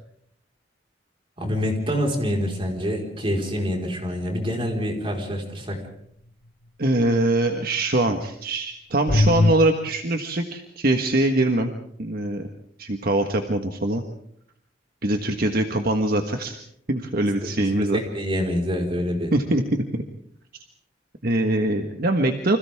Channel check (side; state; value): both; normal; correlation 0.55